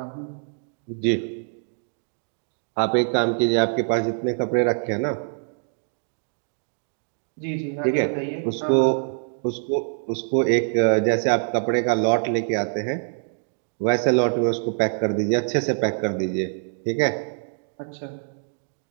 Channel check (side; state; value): left; silent; digital silence